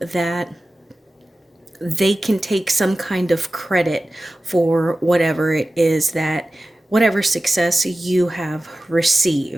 they can take some kind of credit for whatever it is that, whatever success you have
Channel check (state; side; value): normal; both; correlation 0.95